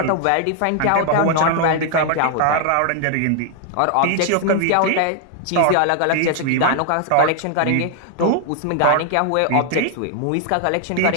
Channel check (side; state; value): both; different; correlation 0.00